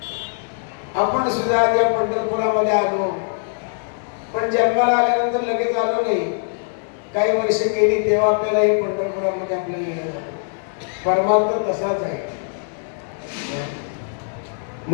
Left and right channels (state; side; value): silent; right; digital silence